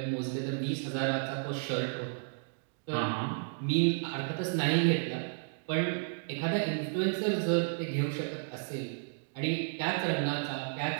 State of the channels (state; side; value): silent; left; digital silence